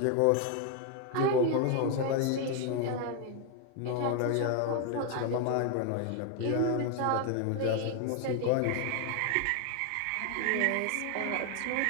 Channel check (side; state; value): both; different; correlation 0.01